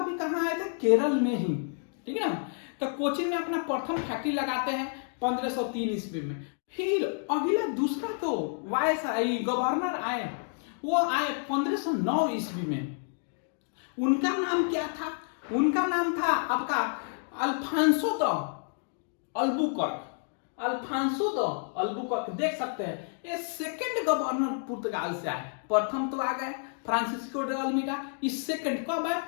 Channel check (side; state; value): right; silent; 58 dB below the other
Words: भी कहाँ आए थे, केरल में ही, ठीक है ना। तो कोचिन में अपना प्रथम फैक्ट्री लगाते हैं 1503 ईस्वी में। फिर अगला दूसरा तो वायसराय गवर्नर आए, वो आए 1509 ईस्वी में। उनका नाम क्या था, उनका नाम था आपका अल्फांसो द अल्बुकर्क। देख सकते हैं, ये सेकंड गवर्नर पुर्तगाल से आए। प्रथम तो आ गए फ्रांसिस्को डे अल्मीडा, इस सेकंड कब आए,